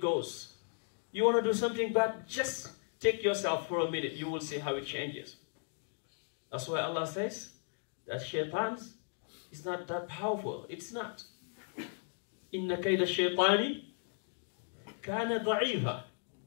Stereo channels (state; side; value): silent; right; 54 dB below the other